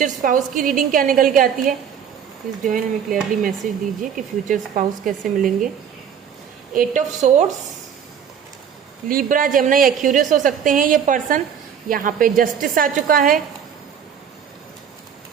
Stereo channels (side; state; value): left; quieter; 8.0 dB